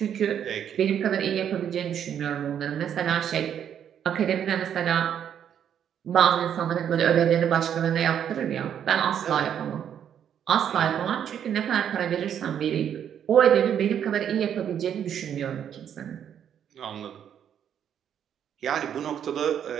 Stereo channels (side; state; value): left; quieter; 9.1 dB